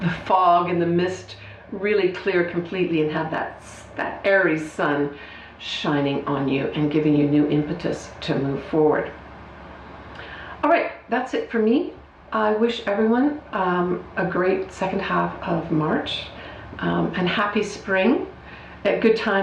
fog and the mist really clear completely and have that Aries sun shining on you and giving you new impetus to move forward. All right, that's it for me. I wish everyone a great second half of March and happy spring. A good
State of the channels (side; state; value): both; identical; correlation 1.00